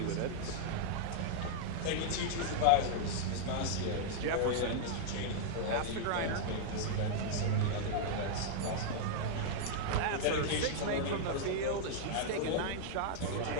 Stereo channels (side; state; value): both; different; correlation -0.01